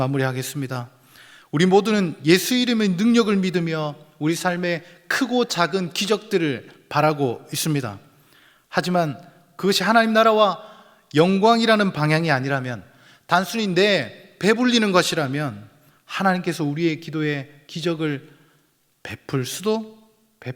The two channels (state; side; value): identical; both; correlation 1.00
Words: 우리 모두는 예수 이름의 능력을 믿으며 우리 삶의 크고 작은 기적들을 바라고 있습니다. 하지만 그것이 하나님 나라와 영광이라는 방향이 아니라면, 단순히 내 배불리는 것이라면 하나님께서 우리의 기도에 기적을 베풀 수도